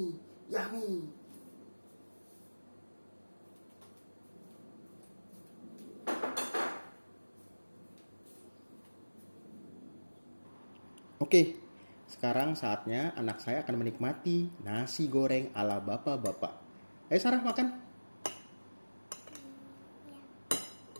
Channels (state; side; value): inverted; both; correlation -1.00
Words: Yummy. Oke, sekarang saatnya anak saya akan menikmati nasi goreng ala bapak-bapak. Ayo Sarah, makan.